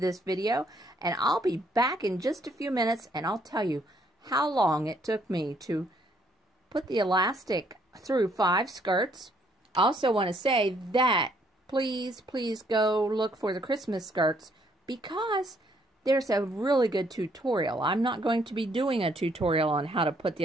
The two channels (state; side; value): normal; both; correlation 0.68